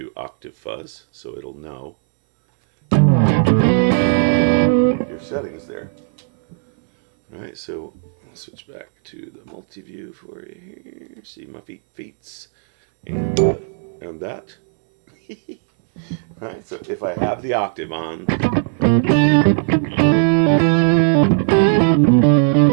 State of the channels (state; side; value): silent; left; 67 dB below the other